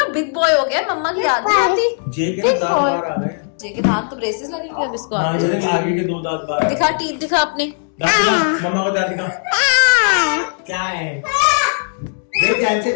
बिग बॉय हो गया, मम्मा की याद नहीं आती। जे के दांत बाहर आ रहे हैं। जे के दांत तो ब्रेसेस लगेंगे अब इसको। हाँ, ये आगे के 2 दांत बाहर। दिखा टीथ दिखा अपने, दांत दिखा, मम्मा को दांत दिखा। क्या है? देख कैसे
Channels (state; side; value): silent; right; 68 dB below the other